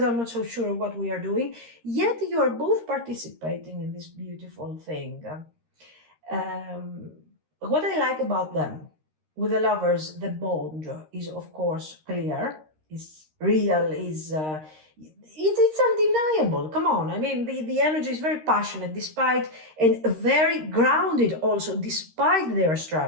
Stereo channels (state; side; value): late; left; 13 ms